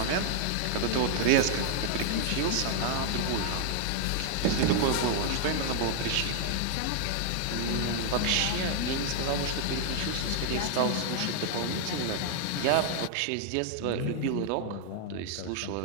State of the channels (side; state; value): both; different; correlation 0.00